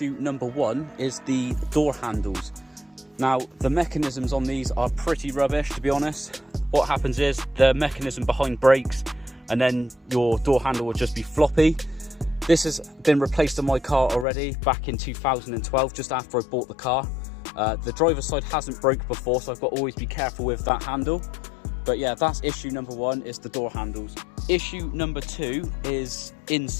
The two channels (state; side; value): drops out; right; at 14.2 s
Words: number one is the door handles. Now, the mechanisms on these are pretty rubbish, to be honest. What happens is the mechanism behind breaks and then your door handle will just be floppy. This has been replaced on my car already back in 2012, just after I bought the car. The driver's side hasn't broke before, so I've got to always be careful with that handle. But yeah, that's issue number one, is the door handles. Issue number two is